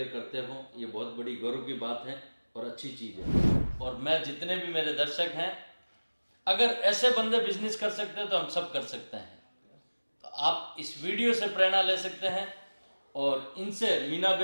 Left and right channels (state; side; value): inverted; both; correlation -1.00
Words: करते हो, ये बहुत बड़ी गौरव की बात है और अच्छी चीज़ है। और मैं जितने भी मेरे दर्शक हैं, अगर ऐसे बंदे बिजनेस कर सकते हैं तो हम सब कर सकते हैं। तो आप इस वीडियो से प्रेरणा ले सकते हैं और इनसे, मीना